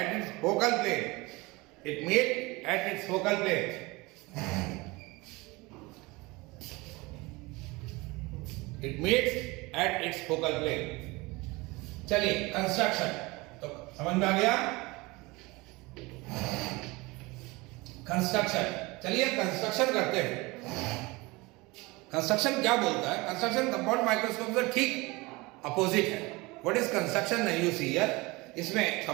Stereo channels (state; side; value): quieter; left; 23.5 dB